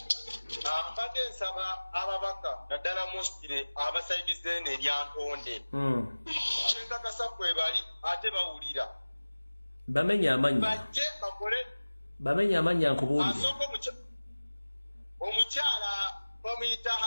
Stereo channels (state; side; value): inverted; both; correlation -1.00